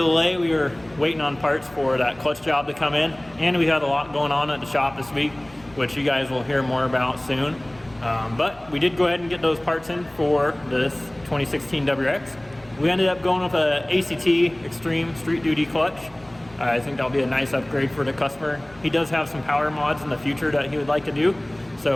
We were waiting on parts for that clutch job to come in, and we had a lot going on at the shop this week, which you guys will hear more about soon. But we did go ahead and get those parts in for this 2016 WRX. We ended up going with a ACT Extreme Street Duty clutch. I think that'll be a nice upgrade for the customer. He does have some power mods in the future that he would like to do,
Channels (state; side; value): noise; left; hum, 26 dB below the sound